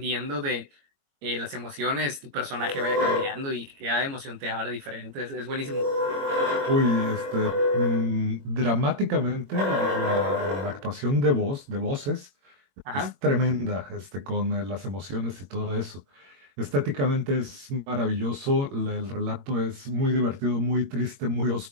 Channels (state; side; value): late; left; 21 ms